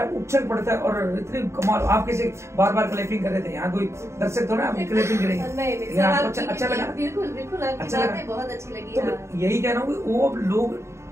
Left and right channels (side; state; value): left; late; 0.13 ms